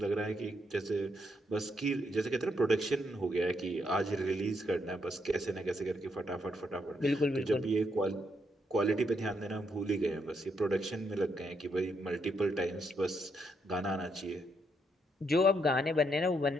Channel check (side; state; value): both; normal; correlation 0.77